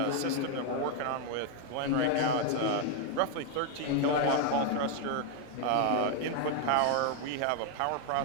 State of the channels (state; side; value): different; both; correlation 0.01